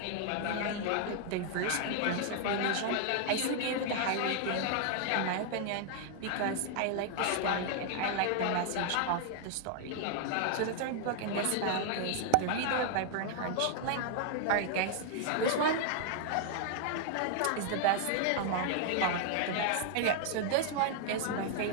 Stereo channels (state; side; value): different; both; correlation 0.00